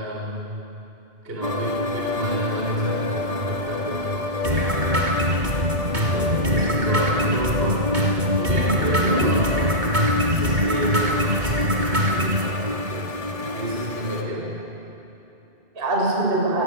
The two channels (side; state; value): left; late; 2.2 ms